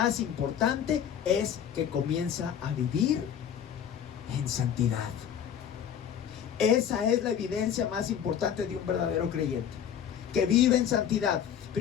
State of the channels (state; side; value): quieter; right; 8.8 dB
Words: importante es que comienza a vivir en santidad. Esa es la evidencia más importante de un verdadero creyente, que vive en santidad.